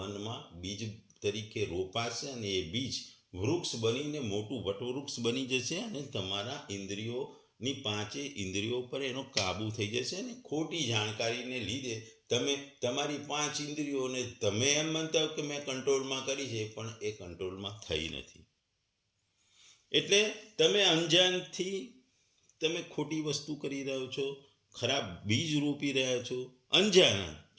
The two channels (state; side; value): identical; both; correlation 1.00